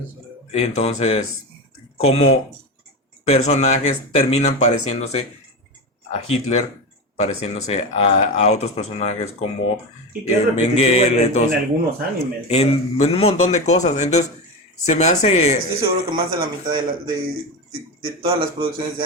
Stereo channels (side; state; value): both; normal; correlation 0.20